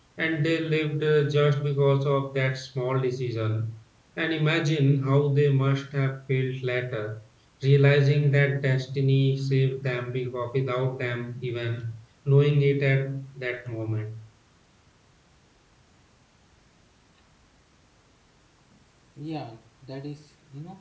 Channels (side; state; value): both; identical; correlation 1.00